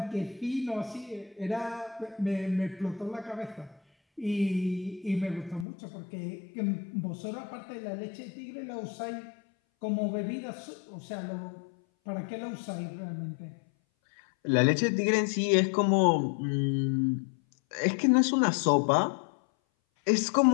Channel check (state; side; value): drops out; right; at 5.7 s